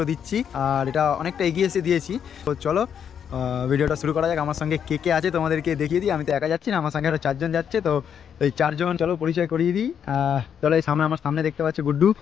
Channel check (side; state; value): right; quieter; 8.2 dB